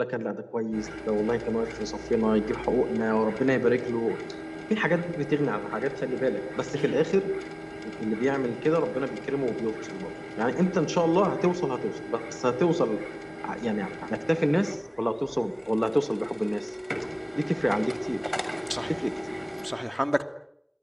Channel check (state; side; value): identical; both; correlation 1.00